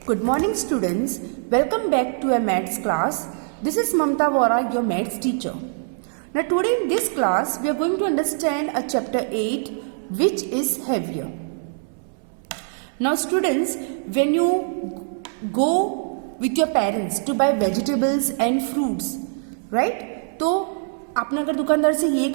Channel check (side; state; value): left; silent; 63 dB below the other